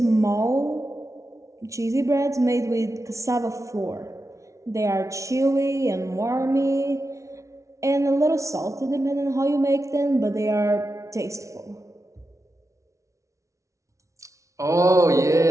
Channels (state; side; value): late; left; 0.15 ms